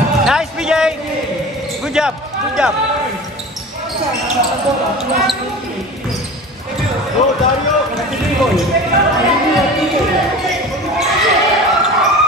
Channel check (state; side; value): normal; both; correlation 0.35